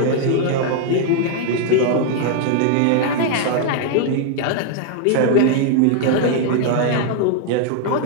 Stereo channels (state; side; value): different; both; correlation 0.00